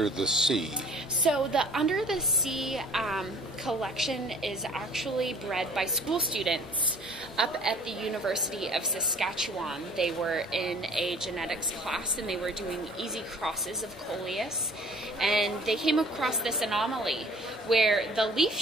the Sea? So the Under the Sea collection is actually bred by school students up at the University of Saskatchewan. They were in a genetics class and they were doing easy crosses of Coleus, and they came across this anomaly where the leaf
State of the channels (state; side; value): normal; both; correlation 0.52